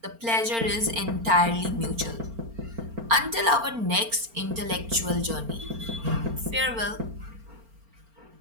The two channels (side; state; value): left; late; 4.4 ms